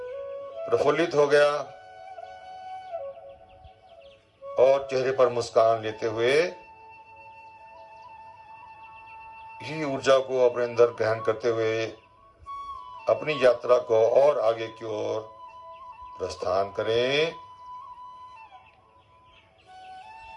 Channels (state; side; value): identical; both; correlation 1.00